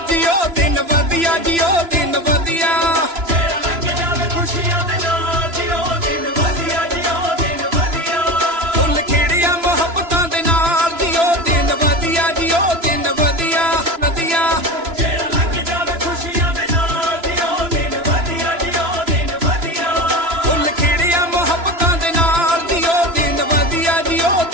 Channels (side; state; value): left; late; 3.0 ms